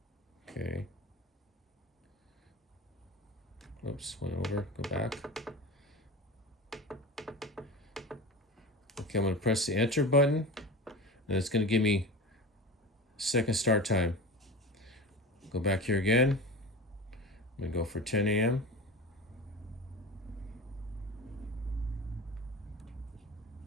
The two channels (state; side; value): normal; both; correlation 0.32